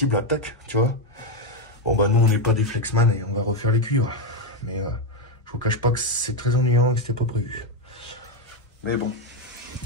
à tac, tu vois. Bon bah nous on n'est pas des Flexman et on va refaire les cuivres. Mais je vous cache pas que c'est très ennuyant et que c'était pas prévu. Mais bon,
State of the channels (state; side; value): normal; both; correlation 0.05